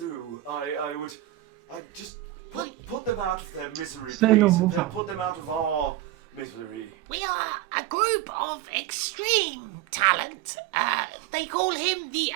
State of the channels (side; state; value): left; quieter; 14.6 dB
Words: I'd just put them out of their misery, please, and then put them out of our misery. We are a group of extreme talent. They call him the